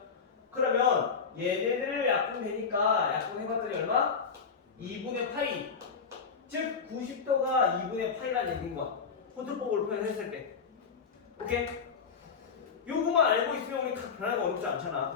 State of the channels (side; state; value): right; quieter; 5.7 dB